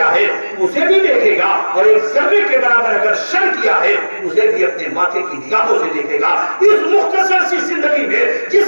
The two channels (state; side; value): inverted; both; correlation -1.00